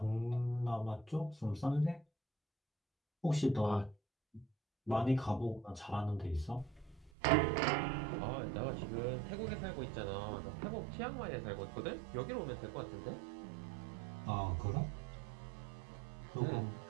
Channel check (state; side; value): drops out; left; at 7.1 s